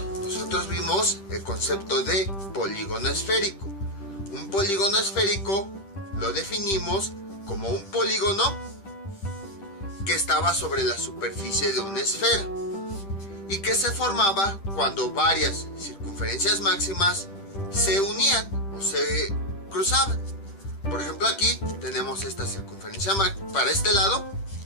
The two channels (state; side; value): late; right; 10 ms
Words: nosotros vimos el concepto de polígono esférico. Un polígono esférico lo definimos como un polígono que estaba sobre la superficie de una esfera y que se formaba cuando varias circunferencias máximas se unían o se cruzaban. Por ejemplo, aquí tenemos esta circunferencia para este lado,